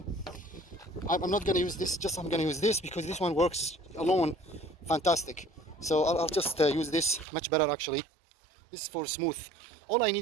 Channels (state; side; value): drops out; left; at 7.2 s